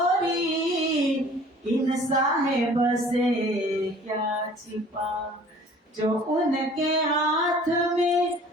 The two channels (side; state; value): both; normal; correlation 0.50